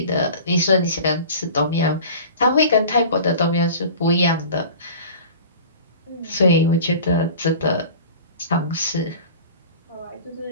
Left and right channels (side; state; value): both; inverted; correlation -0.40